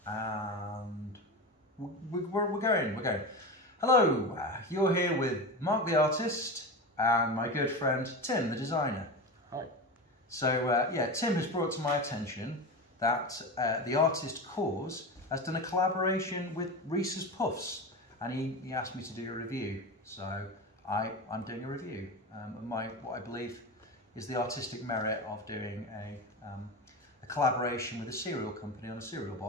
and we're going. Hello, you're here with Mark the artist and my good friend Tim the designer. Hi. So yeah, Tim has brought to my attention that the artist Kaws has done a collaboration with Reese's Puffs, and he asked me to do a review. So I'm doing a review. What I believe is the artistic merit of doing a collaboration with a cereal company on a cereal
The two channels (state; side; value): normal; both; correlation 0.24